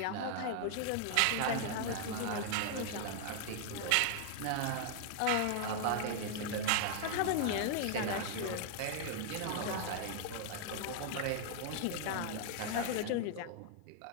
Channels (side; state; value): both; different; correlation 0.00